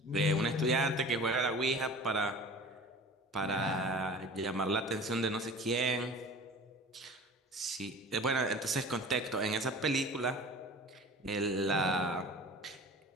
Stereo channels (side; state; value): both; normal; correlation 0.41